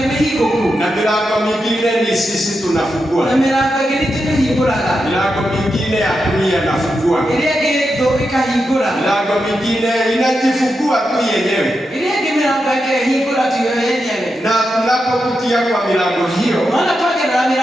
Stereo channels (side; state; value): both; normal; correlation 0.87